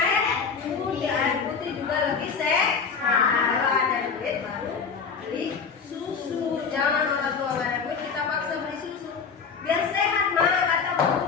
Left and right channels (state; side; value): quieter; right; 5.7 dB